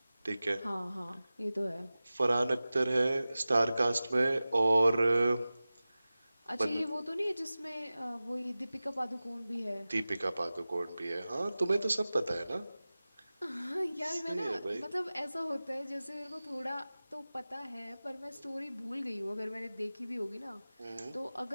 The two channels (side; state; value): both; inverted; correlation -0.97